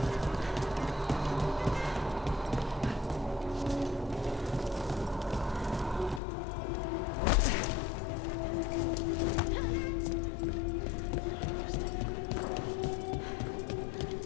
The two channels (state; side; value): drops out; right; at 6.2 s